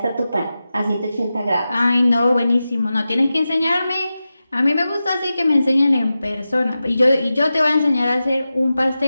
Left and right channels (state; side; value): inverted; both; correlation -0.93